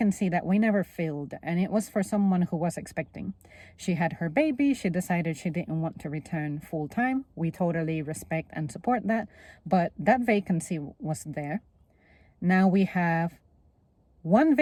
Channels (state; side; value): identical; both; correlation 1.00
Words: that we never filled, and it was for someone who was expecting. She had her baby. She decided she didn't want to return full time. We totally respect and support that, but that vacancy was there. Now we have one